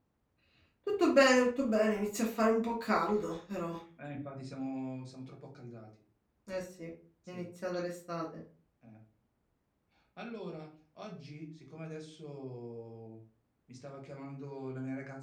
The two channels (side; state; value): both; identical; correlation 1.00